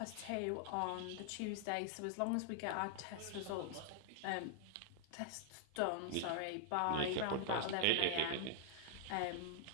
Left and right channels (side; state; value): both; different; correlation -0.01